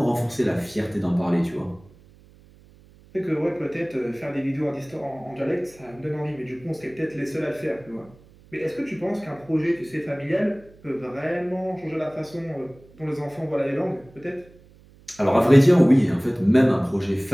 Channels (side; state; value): right; noise; hum, 26 dB below the sound